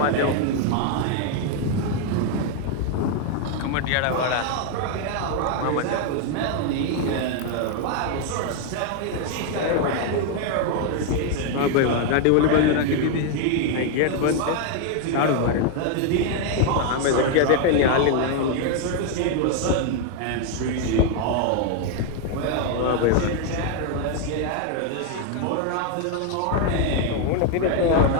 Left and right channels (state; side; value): different; both; correlation 0.00